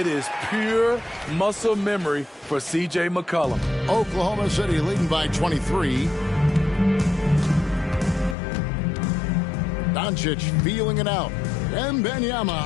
is pure muscle memory for C.J. McCollum. Oklahoma City leading by 23. Doncic feeling it out. Wembanyama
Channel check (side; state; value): right; drops out; at 8.3 s